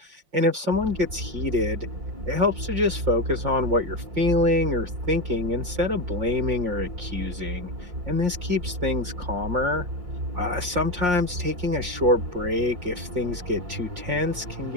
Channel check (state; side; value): late; left; 5.6 ms